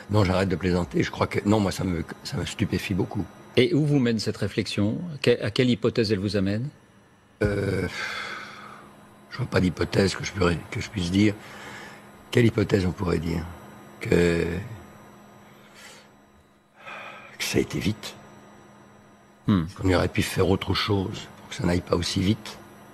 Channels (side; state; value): both; identical; correlation 1.00